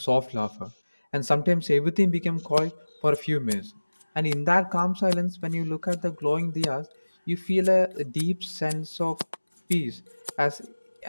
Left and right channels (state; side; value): inverted; both; correlation -1.00